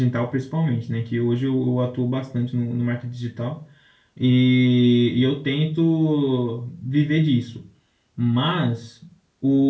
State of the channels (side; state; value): both; identical; correlation 1.00